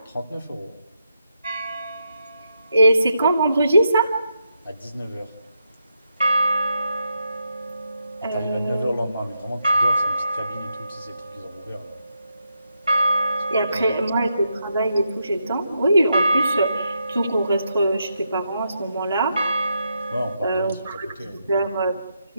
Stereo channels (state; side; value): inverted; both; correlation -0.82